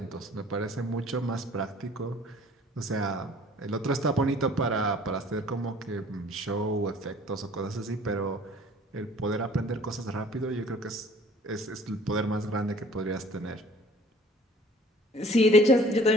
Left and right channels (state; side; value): normal; both; correlation 0.52